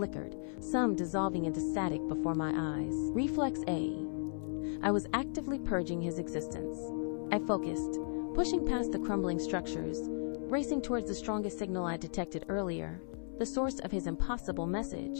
some dissolving into static before my eyes. Reflex A. I was actively purging his existence. I focused, pushing past the crumbling structures, racing towards the strongest signal I detected earlier, the source of his impossible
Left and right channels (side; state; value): right; silent; 54 dB below the other